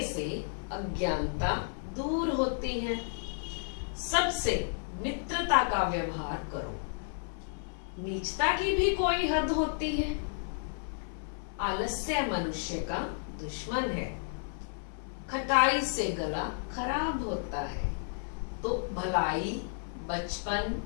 से अज्ञानता दूर होती है, सबसे मित्रता का व्यवहार करो, नीचता की भी कोई हद होती है, आलस्य मनुष्य का दुश्मन है, खटाई से गला खराब होता है। तो भलाई, बचपन,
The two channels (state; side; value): silent; right; digital silence